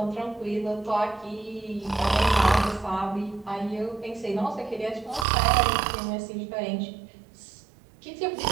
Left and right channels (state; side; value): drops out; left; at 5.2 s